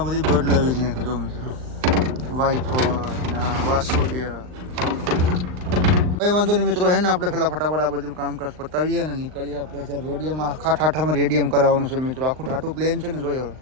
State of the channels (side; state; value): left; late; 39 ms